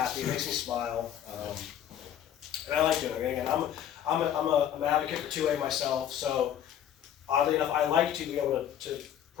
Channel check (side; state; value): right; quieter; 10.3 dB